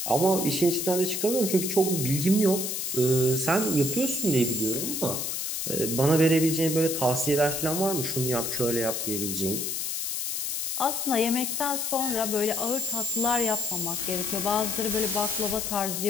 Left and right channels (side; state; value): left; noise; hiss, 2 dB below the sound